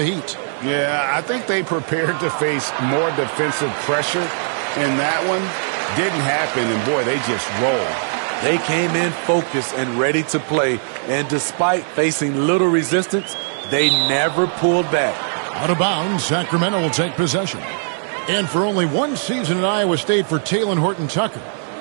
Heat. Yeah, I think they prepared to face more defensive pressure in that one. Didn't happen, and boy, they just rolled. They came in focused and ready to play, and despite facing little resistance, they never pulled back. Out of bounds, Sacramento will take possession. And for only one season at Iowa State for Talen Horton-Tucker,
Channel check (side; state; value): left; silent; 66 dB below the other